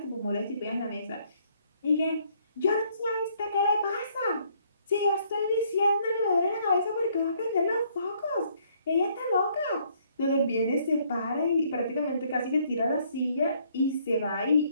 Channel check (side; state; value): both; inverted; correlation -0.66